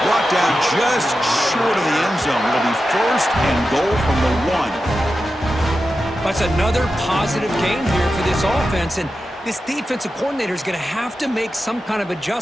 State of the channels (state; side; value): normal; both; correlation 0.91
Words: Brought down just short of the end zone. It'll be first and goal from the 1. That's another positive game here for this offense, and this defensive coordinator is going to have to make some kind of